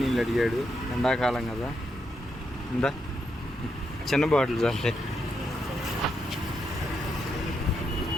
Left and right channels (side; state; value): both; normal; correlation 0.82